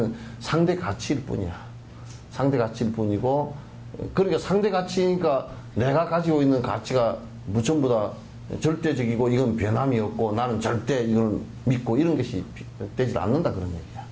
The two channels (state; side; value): identical; both; correlation 1.00